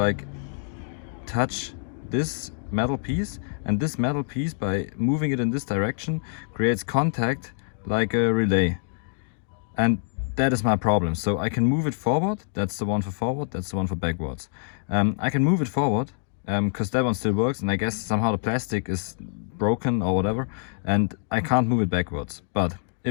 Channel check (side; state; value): right; silent; digital silence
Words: touch this metal piece, and this metal piece, by moving it in this direction, creates contact like a relay, and that is my problem. So I can move it forward, that's the one for forward, that's the one for backwards. I can move it forward because that one still works, and I guess somehow the plastic is broken or whatever, and I can't move it backwards. But